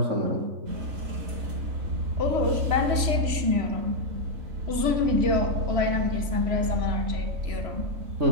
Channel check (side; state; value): left; late; 3.0 ms